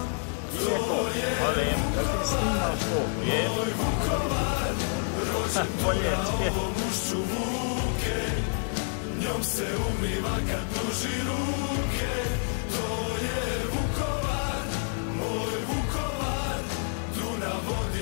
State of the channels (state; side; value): silent; right; 59 dB below the other